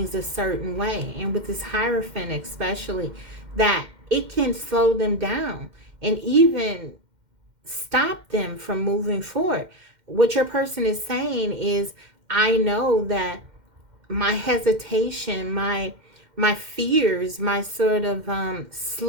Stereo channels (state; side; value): late; left; 2.1 ms